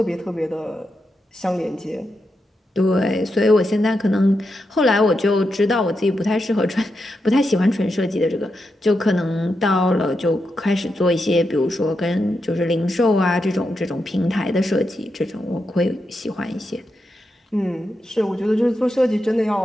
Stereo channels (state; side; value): normal; both; correlation 0.86